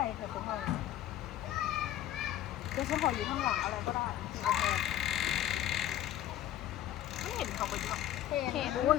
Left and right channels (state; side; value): quieter; right; 12.7 dB